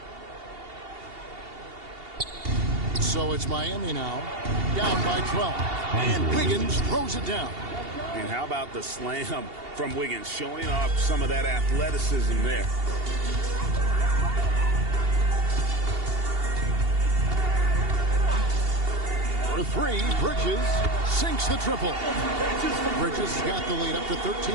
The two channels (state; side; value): late; left; 2.8 ms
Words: So it's Miami now, down by 12. And Wiggins throws it down. And how about the slam from Wiggins, showing off some of that athleticism there. For three, Bridges sinks the triple. Bridges got the lead up to